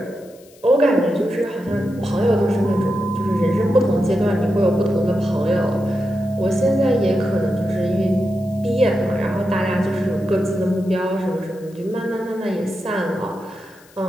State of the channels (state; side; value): noise; left; hiss, 27 dB below the sound